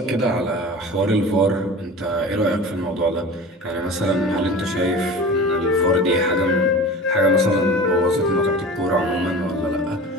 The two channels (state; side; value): normal; both; correlation 0.36